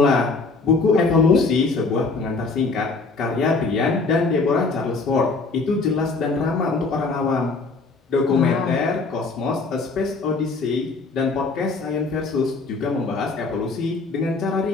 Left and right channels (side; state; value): right; quieter; 3.9 dB